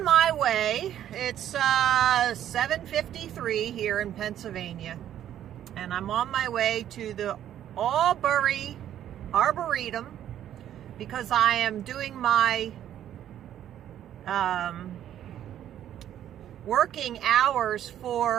my way. It's 7:53 here in Pennsylvania, and I'm on my way to the Albury Arboretum because I am doing my working hours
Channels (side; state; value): left; quieter; 11.0 dB